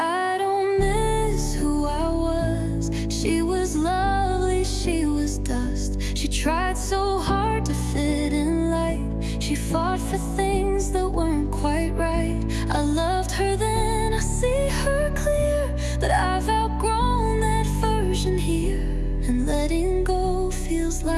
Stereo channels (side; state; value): both; identical; correlation 1.00